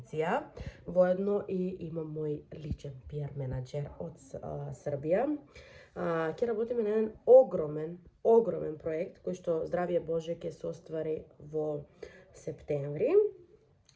Воедно и имам мој личен PR менаџер од Србија. Ќе работиме на еден огромен проект кој што здравје Боже ќе се оствари во септември.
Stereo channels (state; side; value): identical; both; correlation 1.00